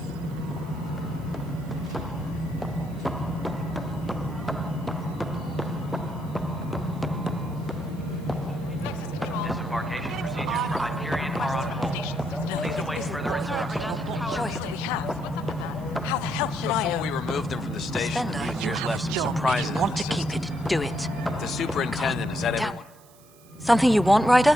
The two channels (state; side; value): noise; right; hiss, 26 dB below the sound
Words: Disembarkation procedures for Hyperion are on hold. Please await further instructions. What choice do we have? How the hell should I know? Before we removed them from the station, Spender, the you engineers have left a some job. surprises. If you want to keep it, do it. The superintendent, is that everyone? Something you want, Ryder?